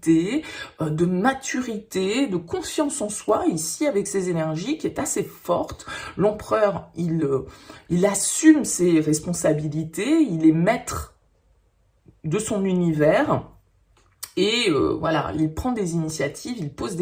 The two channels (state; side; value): identical; both; correlation 1.00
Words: de maturité, de confiance en soi, ici, avec ces énergies qui est assez forte. L'empereur, il assume ses responsabilités, il est maître de son univers. Et voilà, il prend des initiatives, il pose